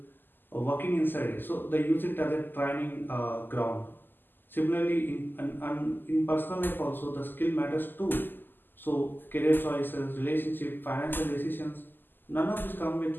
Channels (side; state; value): right; late; 0.092 ms